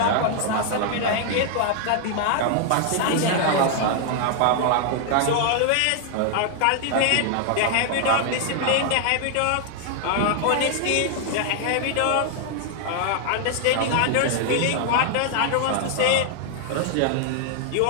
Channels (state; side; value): different; both; correlation 0.00